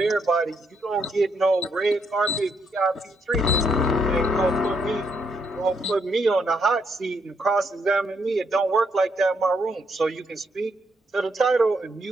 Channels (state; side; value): normal; both; correlation 0.76